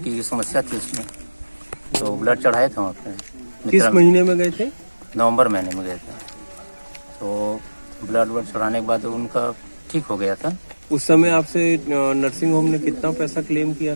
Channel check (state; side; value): inverted; both; correlation -1.00